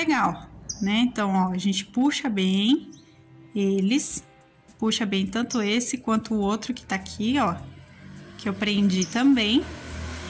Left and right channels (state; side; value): identical; both; correlation 1.00